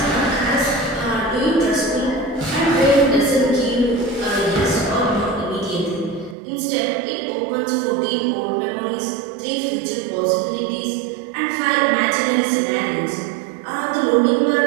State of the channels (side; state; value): left; drops out; at 6.4 s